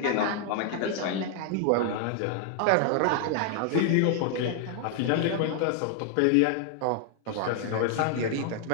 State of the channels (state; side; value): different; both; correlation 0.00